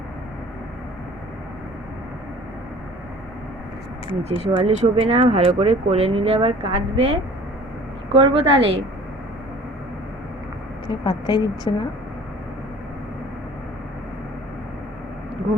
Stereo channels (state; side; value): normal; both; correlation 0.47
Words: নিচে শোয়ালে শোবে না, ভালো করে কোলে নিলে আবার কাঁদবে। কি করবো তাহলে? পাত্তাই দিচ্ছে না।